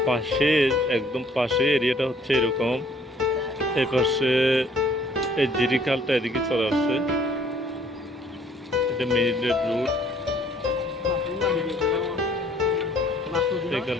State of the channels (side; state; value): both; normal; correlation 0.60